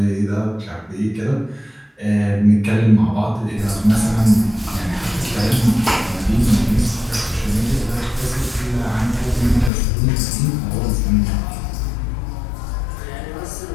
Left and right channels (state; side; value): drops out; right; at 9.7 s